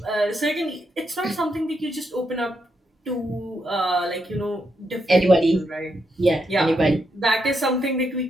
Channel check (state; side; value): normal; both; correlation 0.81